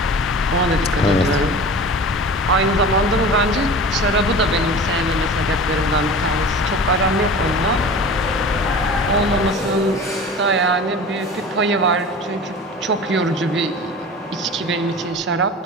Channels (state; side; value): normal; both; correlation 0.37